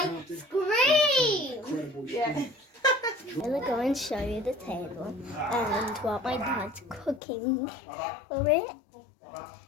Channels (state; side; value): drops out; right; at 7.2 s